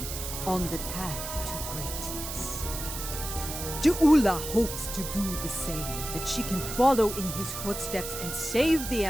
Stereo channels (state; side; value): noise; right; hiss, 7 dB below the sound